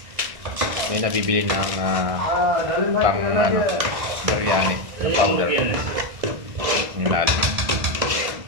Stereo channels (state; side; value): late; left; 1.6 ms